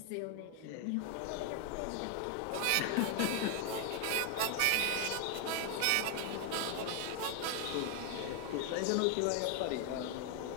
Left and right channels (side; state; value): both; different; correlation 0.01